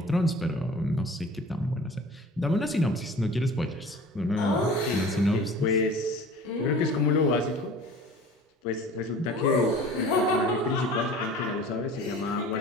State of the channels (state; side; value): normal; both; correlation 0.43